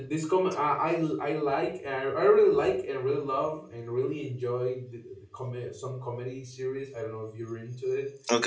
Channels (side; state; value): both; identical; correlation 1.00